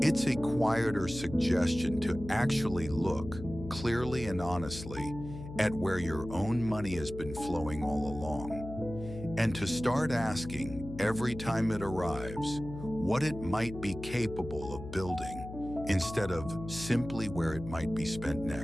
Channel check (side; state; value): left; noise; hum, 11 dB below the sound